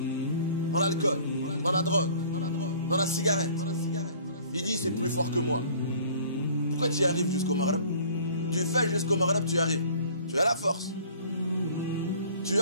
dans l'alcool, dans la drogue, dans la cigarette, il dit c'est plus fort que moi. Pourquoi tu y arrives jusqu'au Maghrib? Tu fais jusqu'au Maghrib, tu y arrives. Tu as la force. Tu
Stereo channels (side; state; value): both; inverted; correlation -0.51